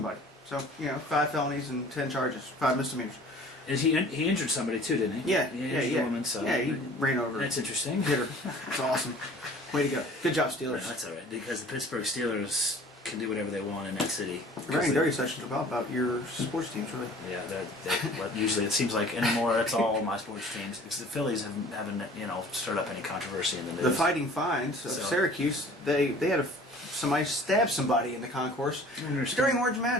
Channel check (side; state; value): both; normal; correlation 0.48